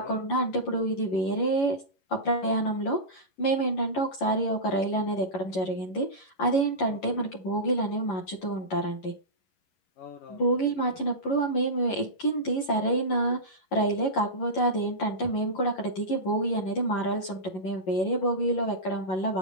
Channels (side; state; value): right; late; 11 ms